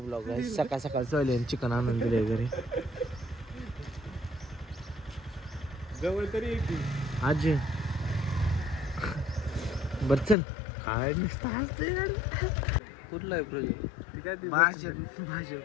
आहे. सकाळ सकाळ चले चिकन आणून दिले घरी. जवळ तरी आजी बर चल काय नुसतं हसतोय कुठला आहे प्रोजेक्ट भाषण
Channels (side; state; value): right; drops out; at 10.4 s